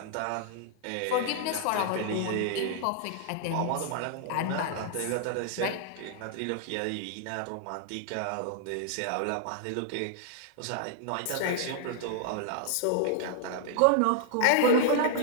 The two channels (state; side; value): different; both; correlation -0.01